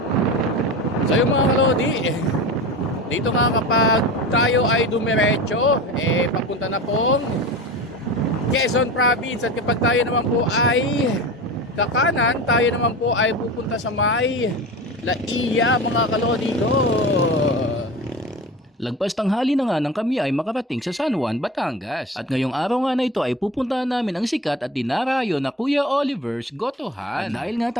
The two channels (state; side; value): normal; both; correlation 0.31